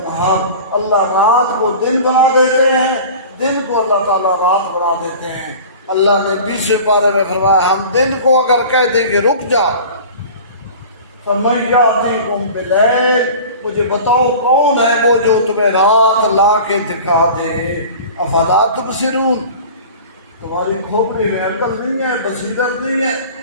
اللہ رات کو دن بنا دیتے ہیں، دن کو اللہ تعالیٰ رات بنا دیتے ہیں۔ اللہ نے 20ویں پارے میں فرمایا ہم دن کو اگر کہہ دیں کہ رک جا، فَمَن يَأْتِيكُم بِاللَّيْلِ، مجھے بتاؤ کون ہے وہ جو تمہیں رات لا کے دکھا دے۔ افلا تبصرون، تمہاری کھوپڑی میں عقل نہیں ہے، بصیرت نہیں ہے۔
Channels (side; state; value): both; inverted; correlation -0.39